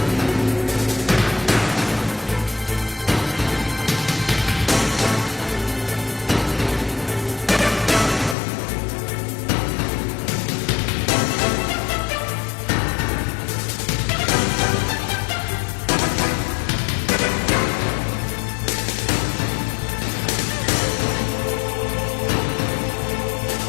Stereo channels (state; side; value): drops out; right; at 8.3 s